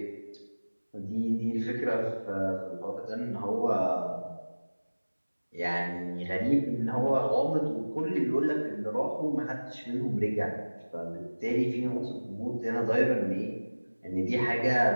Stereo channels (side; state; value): both; inverted; correlation -1.00